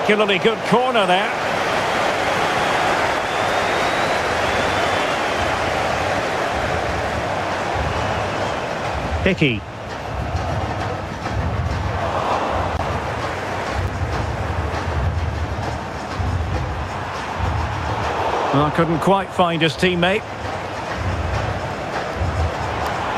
good corner there. Hickey. Well, couldn't quite find his teammate.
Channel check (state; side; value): identical; both; correlation 1.00